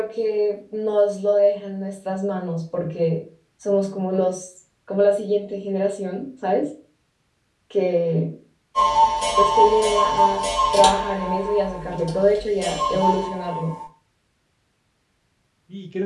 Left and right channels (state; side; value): identical; both; correlation 1.00